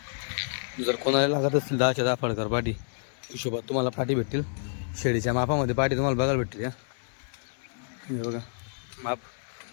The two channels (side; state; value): right; silent; digital silence